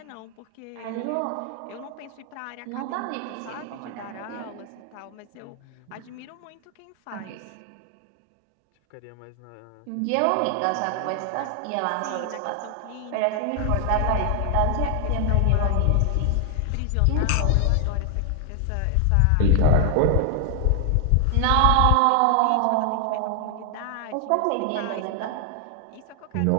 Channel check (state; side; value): different; both; correlation 0.00